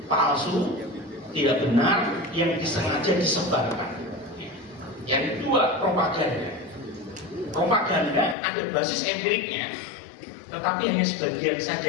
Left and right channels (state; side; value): drops out; right; at 8.3 s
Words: palsu, tidak benar yang disengaja disebarkan. Yang kedua, propaganda. Propaganda ada basis empiriknya, tetapi hanya sebagian saja